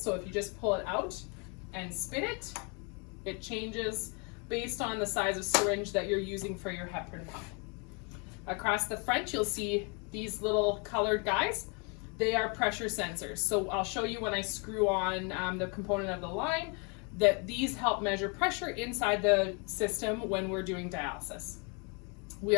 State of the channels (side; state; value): right; quieter; 34.4 dB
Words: So if you just pull it out and spin it, it changes based on the size of syringe that you're using for your heparin pump. Across the front, you'll see these little colored guys. They are pressure sensors. So I'll show you when I screw on the component of the line that these help measure pressure inside the system when we're doing dialysis. We